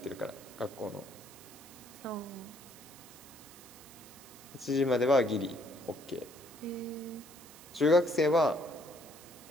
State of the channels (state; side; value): noise; right; hiss, 19 dB below the sound